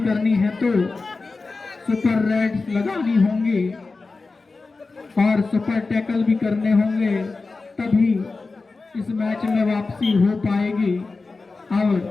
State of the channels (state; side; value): quieter; right; 3.9 dB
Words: है तो सुपर रेड्स लगानी होंगी और सुपर टैकल भी करने होंगे, तभी इस मैच में वापसी हो पाएगी।